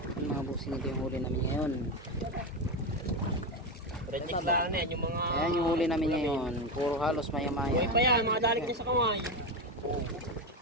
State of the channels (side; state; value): both; normal; correlation 0.14